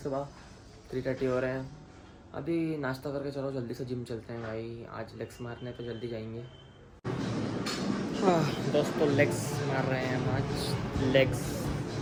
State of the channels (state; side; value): identical; both; correlation 1.00